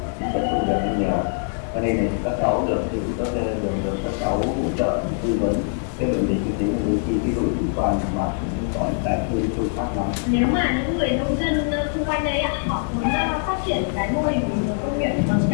cũng sẽ không được nhiều, cho nên là các cháu được thì các cháu hỗ trợ tư vấn cái vấn đề kinh tế, đôi khi cái đối chủ quan mà cũng có những cái hơi sâu sắc lắm. Nếu mà những người nông dân xung quanh đây họ muốn phát triển cái mô hình công nghiệp bằng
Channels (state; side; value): silent; right; digital silence